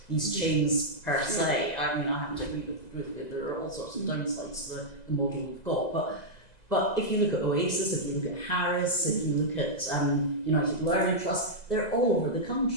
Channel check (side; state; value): right; late; 2.0 ms